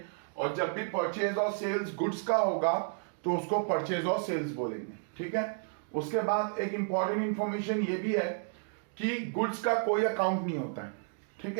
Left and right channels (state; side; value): silent; left; digital silence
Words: और जब भी परचेज और सेल्स गुड्स का होगा तो उसको परचेज और सेल्स बोलेंगे। ठीक है। उसके बाद एक इंपॉर्टेंट इंफॉर्मेशन ये भी है कि गुड्स का कोई अकाउंट नहीं होता है। ठीक